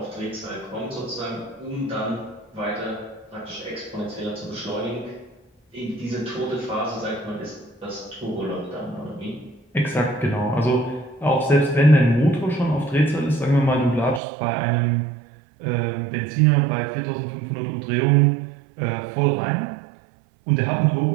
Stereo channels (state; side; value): drops out; left; at 14.2 s